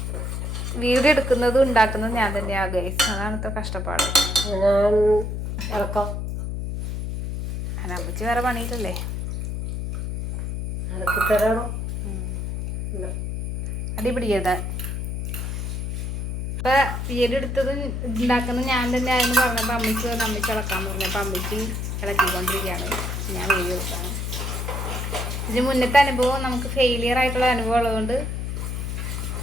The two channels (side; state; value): left; noise; hum, 3 dB below the sound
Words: വീഡിയോ എടുക്കുന്നതും ഉണ്ടാക്കുന്നതും ഞാൻ തന്നെയാണ് ഗൈസ്. അതാണ് ഇത്ര കഷ്ടപ്പാട്. അമ്മച്ചി വേറെ പണിയിട്ടല്ലേ. അടിപിടിക്കരുത്. ഇപ്പം വീഡിയോ എടുത്തതും ഉണ്ടാക്കുന്നത് ഞാൻ തന്നെ ആയെന്ന് പറഞ്ഞപ്പോൾ അമ്മച്ചി ഇളക്കാമെന്ന് പറഞ്ഞപ്പോൾ അമ്മച്ചി ഇളക്കിക്കൊണ്ടിരിക്കുകയാണ്. ഞാൻ വീഡിയോ എടുക്കാണ്. ഇതിന് മുന്നത്തെ അനുഭവം നമുക്ക് ഫെയിലിയർ ആയിട്ടുള്ള അനുഭവം ഉള്ളതുകൊണ്ട്